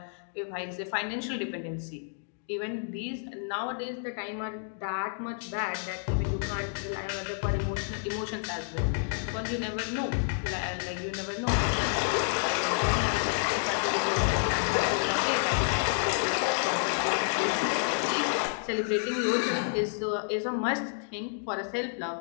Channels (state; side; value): silent; right; digital silence